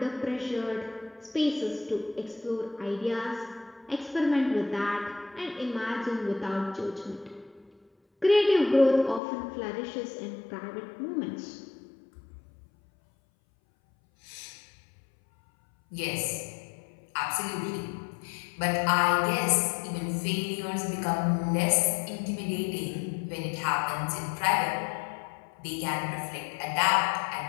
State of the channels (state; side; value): drops out; right; at 9.2 s